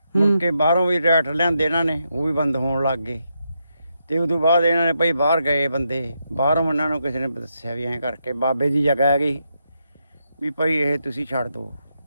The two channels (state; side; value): inverted; both; correlation -0.83